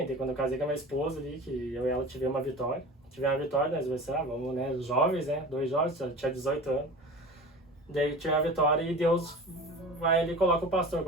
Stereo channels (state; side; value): normal; both; correlation 0.36